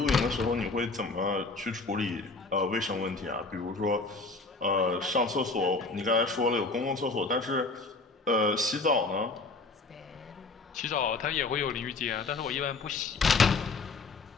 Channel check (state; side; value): quieter; right; 3.7 dB